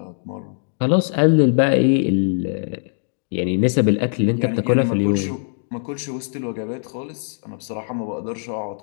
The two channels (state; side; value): silent; right; digital silence